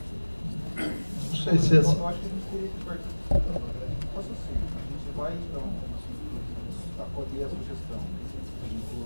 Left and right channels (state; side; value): inverted; both; correlation -1.00